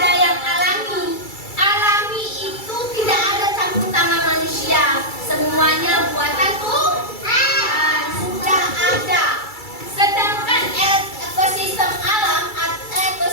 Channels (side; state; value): right; late; 2.3 ms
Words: yang alami. Alami itu tidak ada campur tangan manusia. Semuanya buatan Tuhan. Sudah ada. Sedangkan ekosistem alam atau